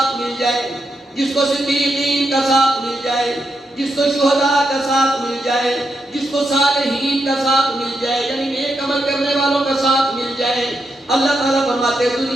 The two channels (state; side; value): normal; both; correlation 0.83